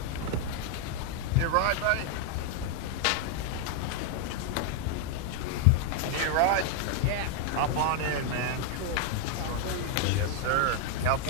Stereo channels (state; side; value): different; both; correlation 0.00